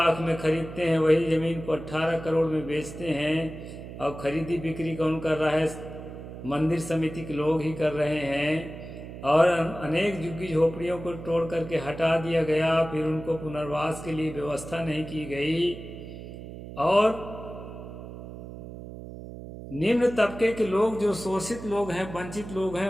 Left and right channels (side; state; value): right; noise; hum, 12 dB below the sound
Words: में खरीदते हैं, वही जमीन को 18 करोड़ में बेचते हैं, और खरीदी बिक्री कौन कर रहा है? मंदिर समिति के लोग ही कर रहे हैं। और अनेक झुग्गी झोपड़ियों को तोड़ करके हटा दिया गया, फिर उनको पुनर्वास के लिए व्यवस्था नहीं की गई, और निम्न तबके के लोग, जो शोषित लोग हैं, वंचित लोग हैं,